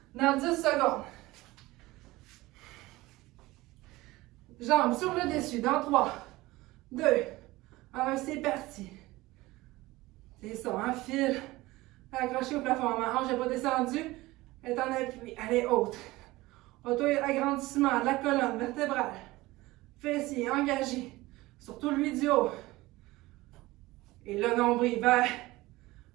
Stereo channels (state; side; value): quieter; left; 19.4 dB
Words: dans 10 secondes. Jambes sur le dessus dans 3, 2, 1, c'est parti. C'est ça, un fil accroché au plafond. Ma hanche n'est pas descendue, elle est en appui, elle est haute. Auto-agrandissement de la colonne vertébrale. Fessiers engagés, surtout lui du haut. Et le nombril vers